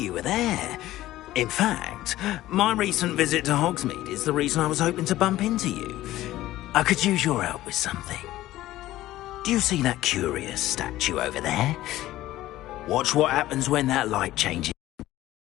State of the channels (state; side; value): quieter; right; 15.4 dB